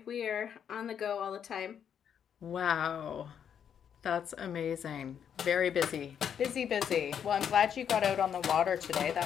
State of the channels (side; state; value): right; quieter; 8.3 dB